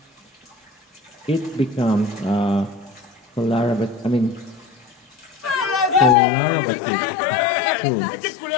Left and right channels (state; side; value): drops out; right; at 6.2 s